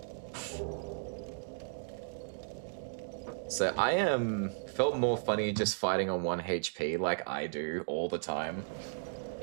So I felt more funny just fighting on 1 HP like I do all the time.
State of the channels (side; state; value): left; silent; digital silence